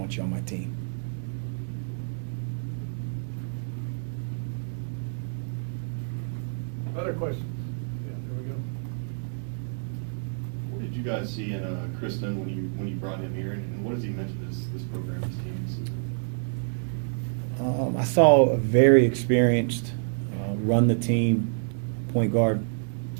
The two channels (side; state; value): left; silent; digital silence